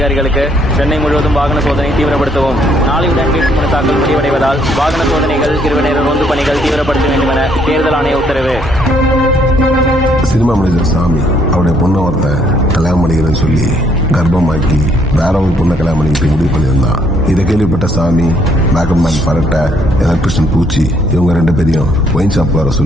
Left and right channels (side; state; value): both; normal; correlation 0.68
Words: சென்னை முழுவதும் வாகன சோதனை தீவிரப்படுத்தவும். நாளையுடன் வேட்புமனு தாக்கல் முடிவடைவதால் வாகன சோதனைகள், இரவு நேர ரோந்து பணிகள் தீவிரப்படுத்த வேண்டும் என தேர்தல் ஆணைய உத்தரவு. சினிமா மனிதர் சாமி அவருடைய பொண்ணை ஒருத்தன் கல்யாணம் பண்ணிக்கிறேன்னு சொல்லி கர்ப்பமாக்கி வேற ஒரு பொண்ணை கல்யாணம் பண்ணிக்கிட்டு முடிவு பண்ணியிருந்தான். இதை கேள்விப்பட்ட சாமி, மேக்கப் மேன் பரட்டை, எலக்ட்ரிஷியன் பூச்சி இவங்க 2 பேரையும் ஒயின் ஷாப் வர